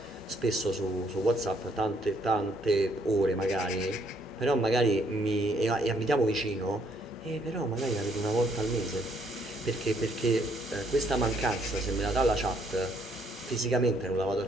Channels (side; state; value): both; normal; correlation 0.68